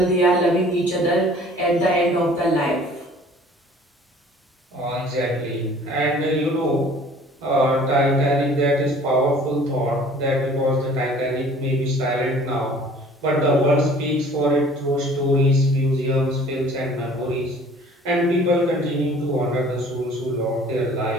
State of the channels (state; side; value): normal; both; correlation 0.51